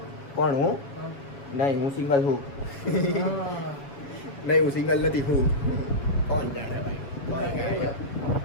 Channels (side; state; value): right; late; 7.1 ms